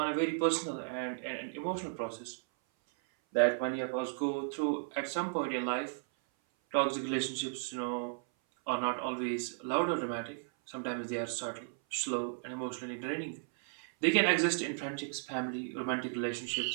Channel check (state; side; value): silent; left; 55 dB below the other